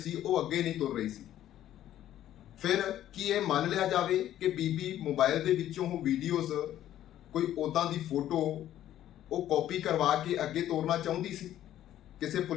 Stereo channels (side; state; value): right; quieter; 12.3 dB